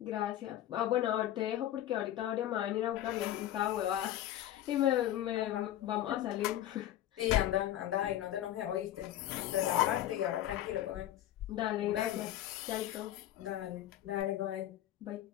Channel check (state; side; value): quieter; right; 12.7 dB